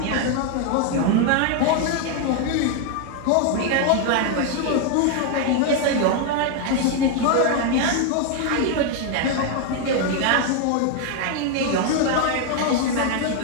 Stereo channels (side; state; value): both; different; correlation 0.01